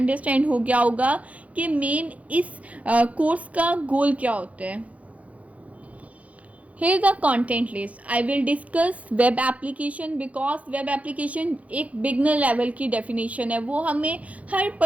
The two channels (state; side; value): late; left; 0.067 ms